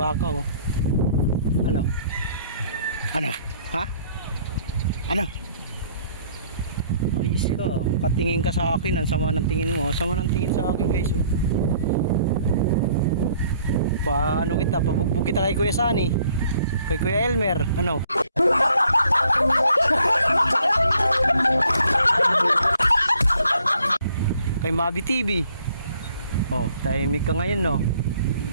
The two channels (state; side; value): inverted; both; correlation -0.61